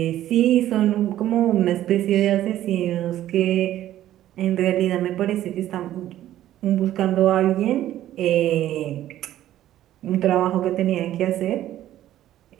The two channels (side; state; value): left; quieter; 13.0 dB